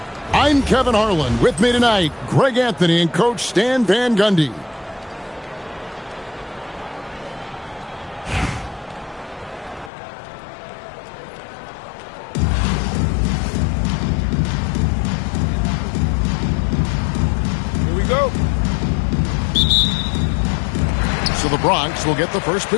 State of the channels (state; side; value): drops out; right; at 9.9 s